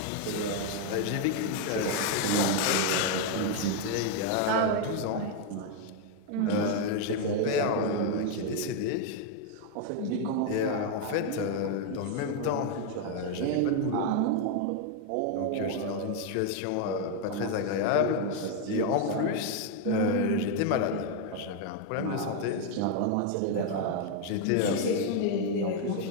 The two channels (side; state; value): both; different; correlation 0.01